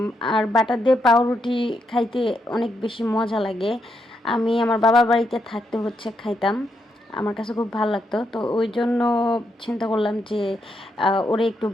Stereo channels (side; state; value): both; normal; correlation 0.80